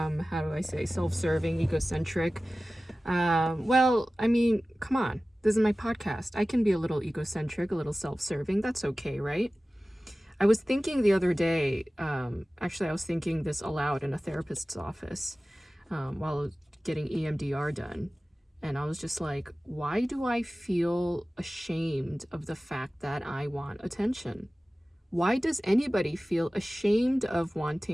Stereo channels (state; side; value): normal; both; correlation 0.96